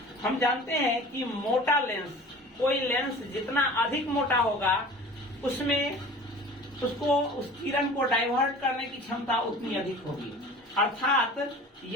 हम जानते हैं कि मोटा लेंस, कोई लेंस जितना अधिक मोटा होगा उसमें उसको उस किरण को डाइवर्ट करने की क्षमता उतनी अधिक होगी। अर्थात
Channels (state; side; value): normal; both; correlation 0.41